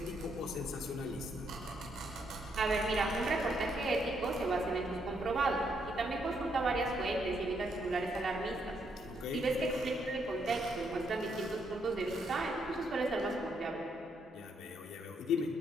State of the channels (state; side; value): normal; both; correlation 0.75